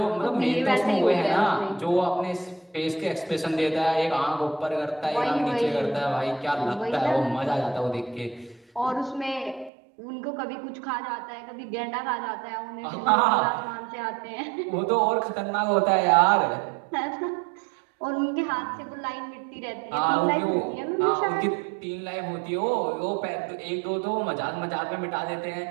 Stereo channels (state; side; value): drops out; left; at 9.7 s